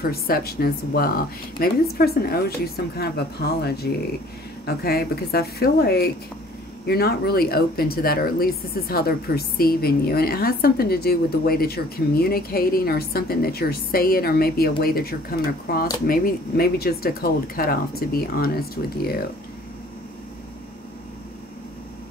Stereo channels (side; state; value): both; normal; correlation 0.53